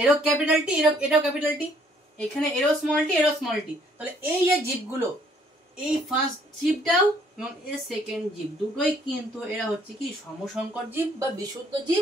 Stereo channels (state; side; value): normal; both; correlation 0.64